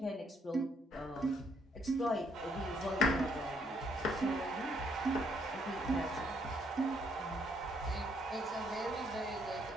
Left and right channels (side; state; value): both; normal; correlation 0.70